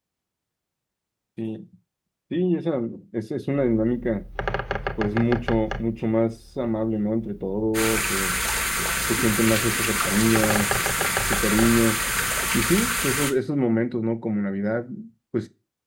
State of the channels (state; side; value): identical; both; correlation 1.00